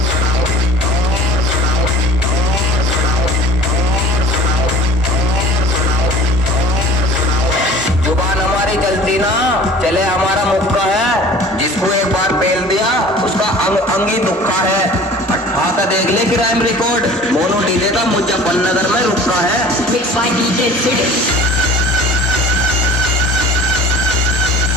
जुबान हमारी चलती ना चले, हमारा मुक्का है, जिसको एक बार पेल दिया उसका अंग अंग ही दुखा है। आता देख ले क्राइम रिकॉर्ड, मोनू डीजे का मुजफ्फरनगर में रुका है। Mixed by DJ Sid.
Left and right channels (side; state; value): both; normal; correlation 0.44